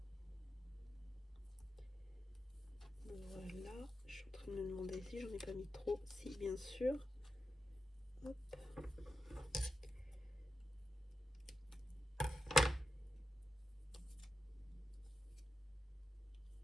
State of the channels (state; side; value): normal; both; correlation 0.88